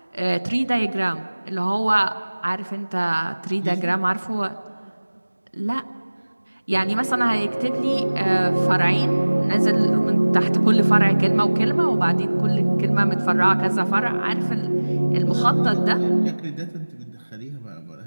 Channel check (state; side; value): inverted; both; correlation -1.00